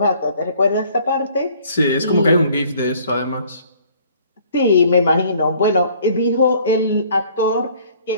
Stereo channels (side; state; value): both; inverted; correlation -0.57